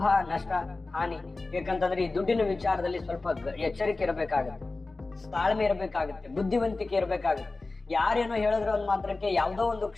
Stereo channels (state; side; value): quieter; right; 3.4 dB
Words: ನಷ್ಟ ಹಾನಿ. ಯಾಕಂತಂದ್ರೆ ಈ ದುಡ್ಡಿನ ವಿಚಾರದಲ್ಲಿ ಸ್ವಲ್ಪ ಎಚ್ಚರಿಕೆ ಇರಬೇಕಾಗುತ್ತೆ, ತಾಳ್ಮೆ ಇರಬೇಕಾಗುತ್ತೆ, ಬುದ್ಧಿವಂತಿಕೆ ಇರಬೇಕಾಗುತ್ತೆ. ಯಾರೇನೋ ಹೇಳಿದ್ರು ಒಂದ್ ಮಾತ್ರಕ್ಕೆ ಯಾವ್ದೋ ಒಂದು